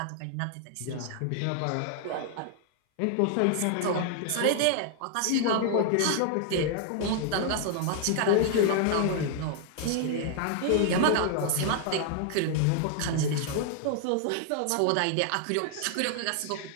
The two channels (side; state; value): both; different; correlation 0.00